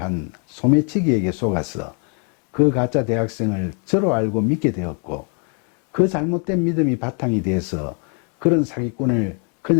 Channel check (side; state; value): right; quieter; 39.8 dB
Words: 한 소매치기에게 속아서 그 가짜 대학생을 저로 알고 믿게 되었고, 그 잘못된 믿음이 바탕이 돼서 그런 사기꾼을